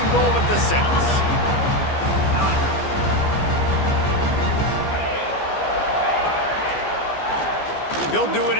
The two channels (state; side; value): late; right; 15 ms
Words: goal at the 6. He'll do it